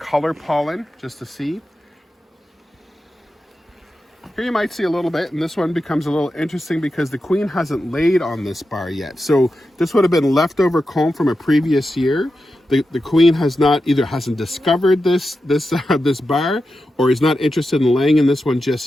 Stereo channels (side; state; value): both; normal; correlation 0.90